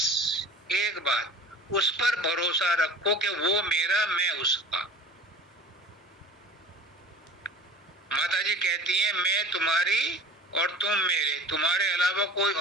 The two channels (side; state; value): both; normal; correlation 0.40